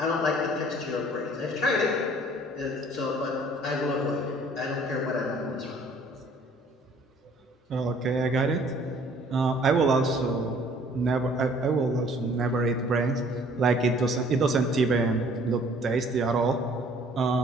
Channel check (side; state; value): both; normal; correlation 0.56